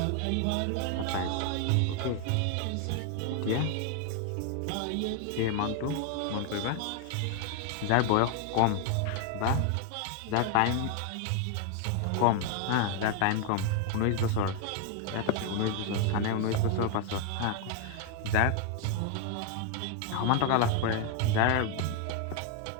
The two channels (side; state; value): both; different; correlation 0.01